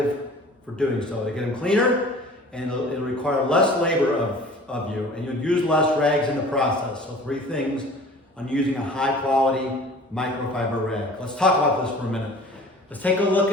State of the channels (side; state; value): both; normal; correlation 0.45